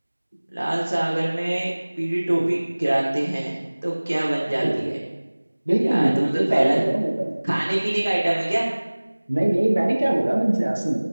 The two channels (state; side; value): inverted; both; correlation -1.00